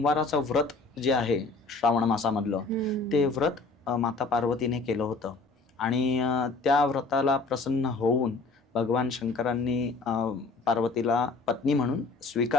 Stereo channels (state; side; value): quieter; right; 3.9 dB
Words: व्रत जे आहे श्रावण मासामधलं ते व्रत माता पार्वतीने केलं होतं आणि त्या व्रताला प्रसन्न होऊन भगवान शंकरांनी पार्वतीला पत्नी म्हणून